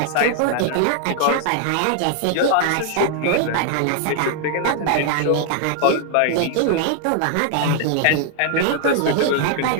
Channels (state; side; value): different; both; correlation 0.00